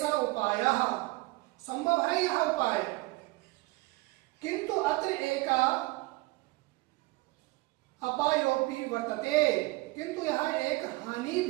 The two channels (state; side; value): quieter; left; 22.1 dB